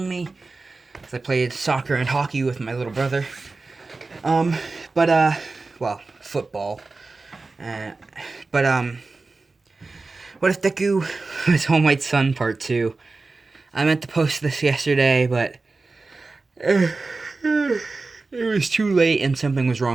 me because I played soccer and hockey with my little brother. Um, well, football. Uh, but what if Deku was Home White Sun Part 2? I meant to post this yesterday, but it was too late and something was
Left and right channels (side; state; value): left; quieter; 3.7 dB